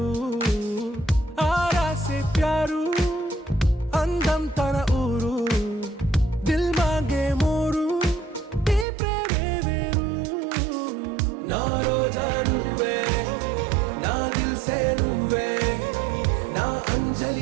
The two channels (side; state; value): left; drops out; at 8.8 s